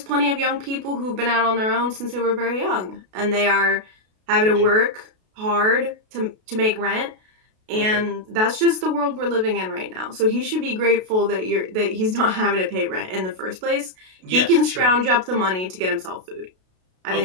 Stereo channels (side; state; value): left; late; 32 ms